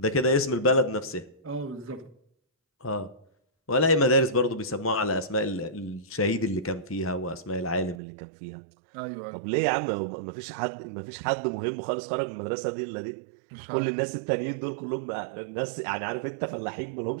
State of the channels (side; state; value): left; drops out; at 8.0 s